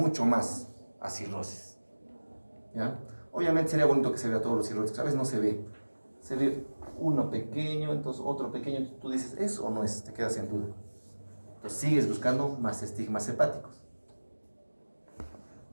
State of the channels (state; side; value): inverted; both; correlation -1.00